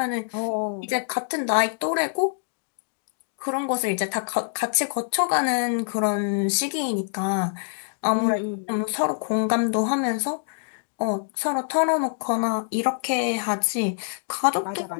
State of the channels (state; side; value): silent; right; digital silence